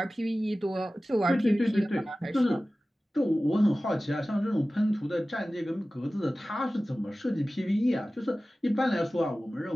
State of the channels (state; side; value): normal; both; correlation 0.96